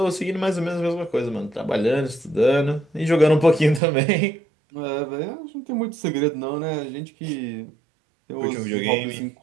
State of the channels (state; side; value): drops out; left; at 3.8 s